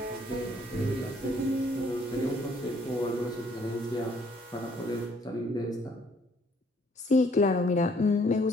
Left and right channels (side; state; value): both; normal; correlation 0.63